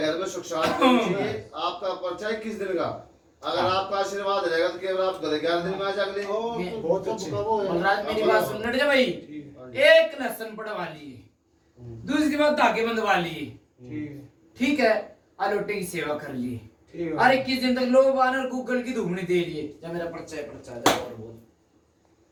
में सुख शांति होनी चाहिए। आपका पर्चा 21 दिन का, अगर आपका आशीर्वाद रहेगा तो केवल आप 11 दिन में आ जाएंगे। बहुत अच्छे। बलराज मेरी बात सुन नट जा भाई। एक लहसन पड़वा लिए, दूसरी बात धागे बंधवा लिए, ठीक है, ठीक है? आलोटे की सेवा कर ली, ठीक है। अरे 21 दिन तक लोग बानर गूगल की धूमनी दे लिए। जब मेरा पर्चा है, पर्चा जा और बोल,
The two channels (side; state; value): both; identical; correlation 1.00